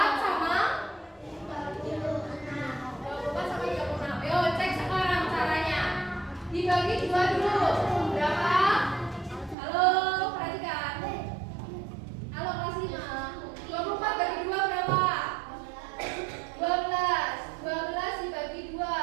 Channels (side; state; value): left; drops out; at 9.6 s